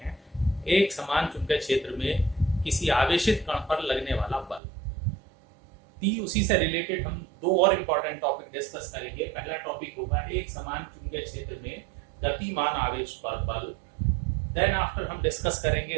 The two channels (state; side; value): drops out; left; at 4.6 s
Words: एक समान चुंबकीय क्षेत्र में किसी आवेशित कण पर लगने वाला बल। उसी से रिलेटेड हम दो और इम्पॉर्टेंट टॉपिक डिस्कस करेंगे। पहला टॉपिक होगा एक समान चुंबकीय क्षेत्र में गतिमान आवेश पर बल। देन आफ्टर हम डिस्कस करेंगे